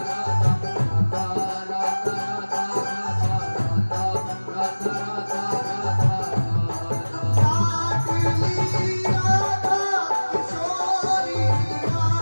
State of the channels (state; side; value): inverted; both; correlation -1.00